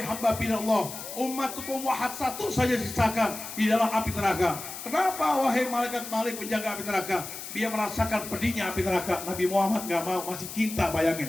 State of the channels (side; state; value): left; noise; hiss, 10 dB below the sound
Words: hamba Allah, umatku wahad satu saja sisakan di dalam api neraka. Kenapa wahai malaikat Malik penjaga api neraka? Dia merasakan pedihnya api neraka. Nabi Muhammad gak mau, masih cinta,